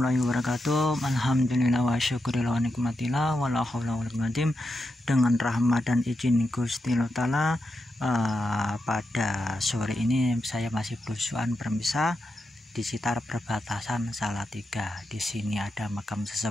wabarakatuh. Alhamdulillah wa syukurillah wa nikmatillah wa la haula wa la quwwata illa billah. Dengan rahmat dan izin Gusti Allah Ta'ala, pada sore ini saya masih berusuhan bermisah di sekitar perbatasan Salatiga. Di sini ada makam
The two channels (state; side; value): normal; both; correlation 0.87